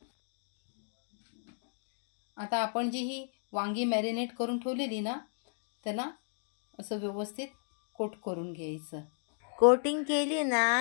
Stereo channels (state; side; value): silent; right; digital silence